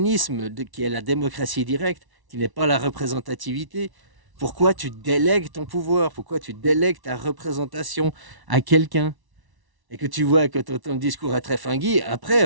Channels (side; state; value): left; late; 1.1 ms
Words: qui est la démocratie directe, qui n'est pas la représentativité, pourquoi tu délègues ton pouvoir, pourquoi tu délègues ta représentation à quelqu'un et que tu vois que ton discours est très fingui,